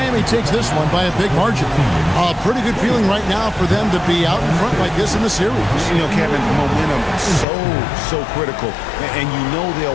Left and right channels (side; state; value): right; drops out; at 7.5 s